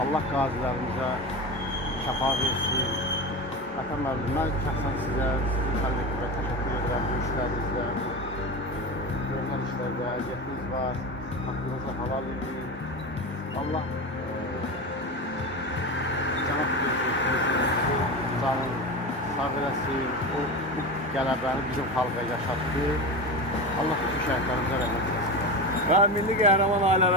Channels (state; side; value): normal; both; correlation 0.24